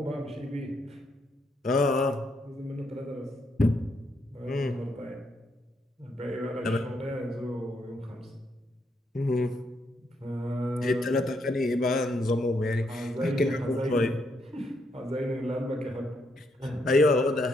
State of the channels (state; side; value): normal; both; correlation 0.76